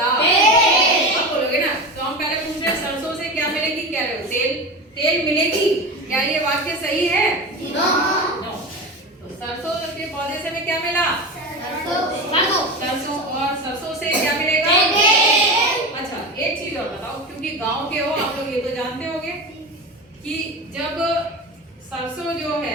आप बोलोगे ना, तो हम पहले पूछ रहे हैं सरसों से क्या मिलेगी, कह रहे हो तेल मिलेगी। क्या ये वाक्य सही है? नो। तो सरसों के पौधे से हमें क्या मिला? सरसों। और सरसों से क्या मिलेगा? अच्छा, एक चीज और बताओ, क्योंकि गांव के हो आप लोग, ये तो जानते होंगे कि जब सरसों जो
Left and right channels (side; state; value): both; normal; correlation 0.25